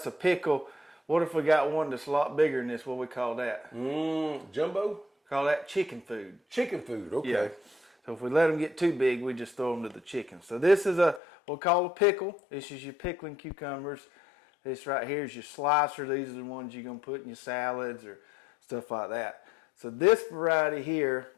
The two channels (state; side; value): drops out; right; at 11.2 s